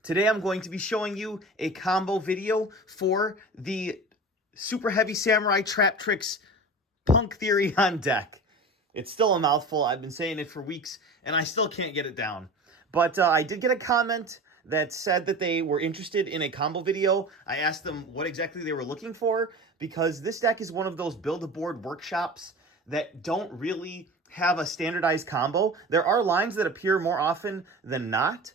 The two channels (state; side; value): normal; both; correlation 0.34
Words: Today I'm going to be showing you a combo video for the Superheavy Samurai Traptrix Punk Therion deck. It's still a mouthful. I've been saying it for weeks, and I still can't get it down. But I did get a comment that said that they were interested in a combo video. I asked them what exactly they were looking for, because this deck is one of those build-a-board workshops that don't really have a standardized combo. There are lines that appear more often than not,